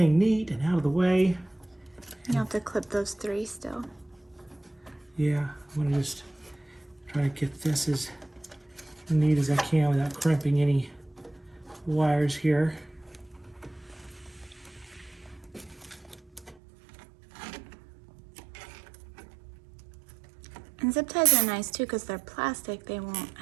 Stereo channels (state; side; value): drops out; left; at 16.6 s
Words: neat and out of the way. You have to clip those 3 still. Yeah, I'm gonna just try to get this as neat as I can without crimping any wires here. And zip ties are nice too because they're plastic. They won't